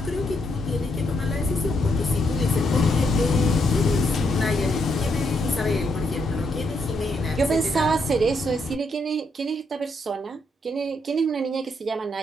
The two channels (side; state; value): both; normal; correlation 0.77